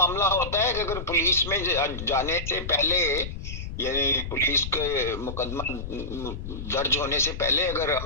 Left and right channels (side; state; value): left; noise; rumble, 8 dB below the sound